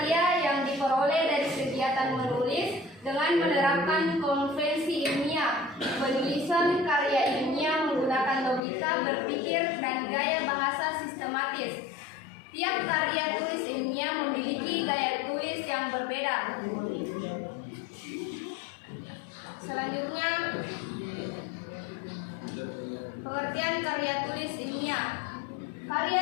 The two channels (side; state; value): right; drops out; at 8.6 s